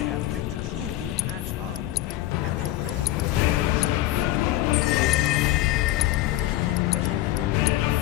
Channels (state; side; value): quieter; right; 15.2 dB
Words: have yet to truly pass on, and their rage remains unquenched. Come, let us keep pressing forward.